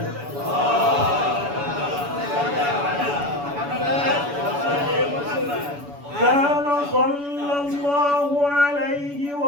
كان صلى الله عليه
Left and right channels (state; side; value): late; left; 7.0 ms